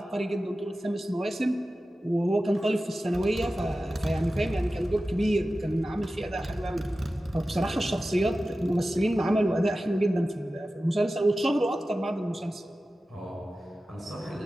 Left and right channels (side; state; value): both; normal; correlation 0.94